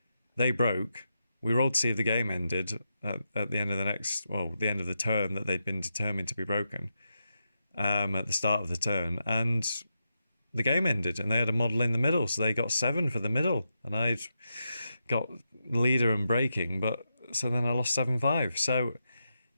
They broke. We rolled to see if the game ended at the end of the end of the turn that they'd been determined to be broken at the start of the turn, and the game ended, and they had a model in the middle, so they got 7 for the middle, and I'd got leader and breaking, so then I lost 7-5. So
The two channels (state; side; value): inverted; both; correlation -0.86